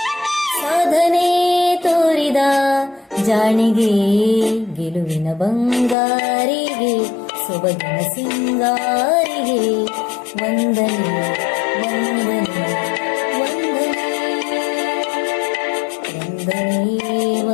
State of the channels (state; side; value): drops out; right; at 6.0 s